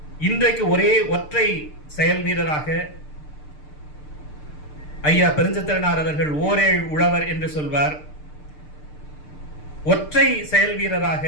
இன்றைக்கு ஒரே ஒற்றை செயல் வீரராக ஐயா பெருஞ்சித்திரனார் அவர்கள் ஓரேழ் உழவர் என்று சொல்வார். ஒற்றை செயல் வீரராக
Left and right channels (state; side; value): late; right; 6.7 ms